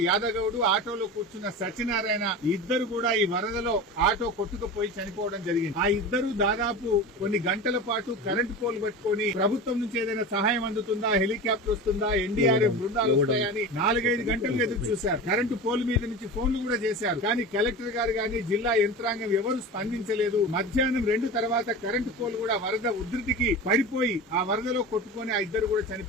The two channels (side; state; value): both; normal; correlation 0.30